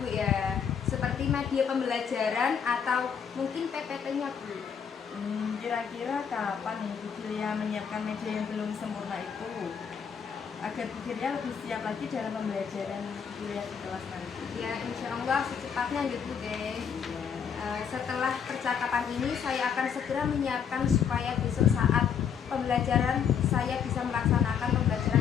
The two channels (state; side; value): quieter; right; 7.4 dB